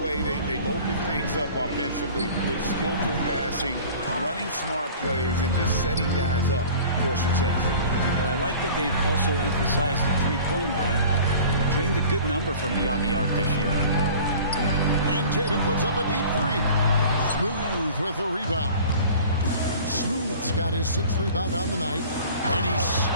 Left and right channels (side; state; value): both; inverted; correlation -0.44